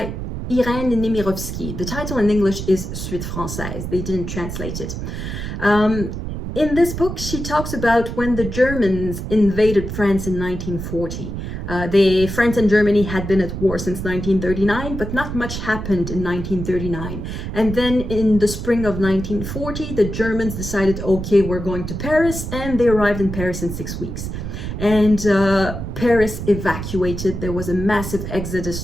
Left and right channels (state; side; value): noise; right; rumble, 6 dB below the sound